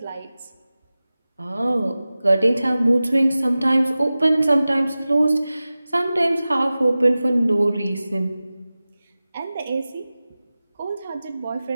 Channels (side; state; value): both; inverted; correlation -0.96